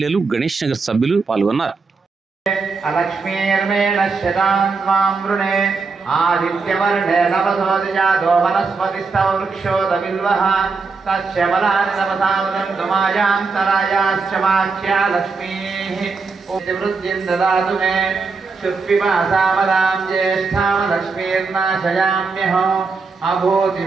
గణేష్ నగర్ సభ్యులు పాల్గొన్నారు. ఆదిత్యవర్ణే నవసోదిజాతో వనస్పతిస్తవ వృక్షోదవిల్వః తస్యబలాని నవసావదంతుమాయాంతరాయాశ్చ వాక్యా లక్ష్మీః వృద్ధిం దదాతు మే శుక్విమాసామదాం జ్యేష్ఠాం లక్ష్మీర్నాశయామ్యహం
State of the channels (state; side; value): quieter; left; 4.5 dB